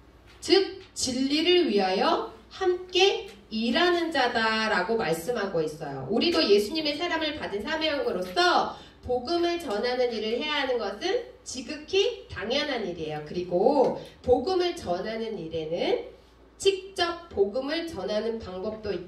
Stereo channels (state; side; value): identical; both; correlation 1.00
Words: 즉 진리를 위하여 함께 일하는 자다라고 말씀하고 있어요. 우리도 예수님의 사람을 받은 사명으로서 복음을 전하는 일을 해야 하는 것은 지극히 당연한 일이에요. 그리고 복음을 전하는 일에는 직접 복음을 전하는 방법도